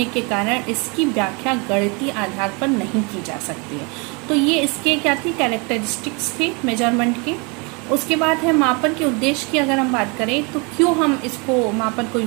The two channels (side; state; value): left; quieter; 30.8 dB